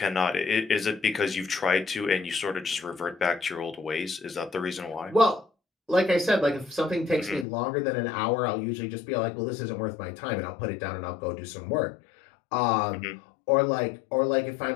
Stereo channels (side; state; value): right; drops out; at 7.5 s